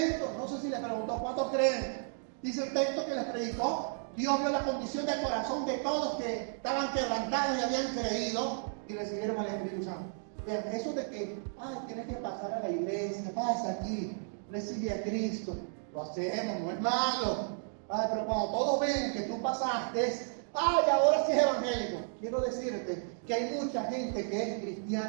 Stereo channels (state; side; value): silent; left; digital silence